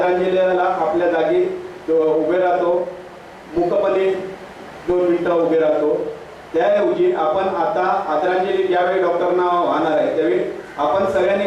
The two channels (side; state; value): both; identical; correlation 1.00